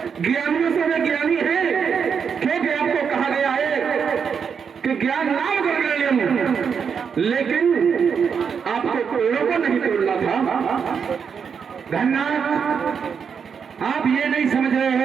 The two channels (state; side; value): quieter; left; 6.6 dB